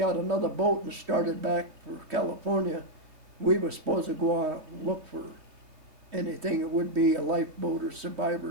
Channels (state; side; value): late; left; 3.1 ms